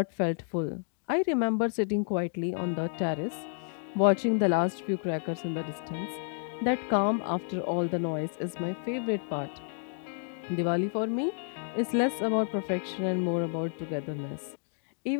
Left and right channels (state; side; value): silent; right; digital silence